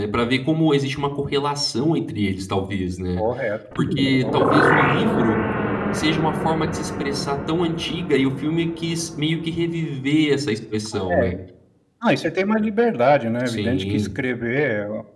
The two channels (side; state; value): both; identical; correlation 1.00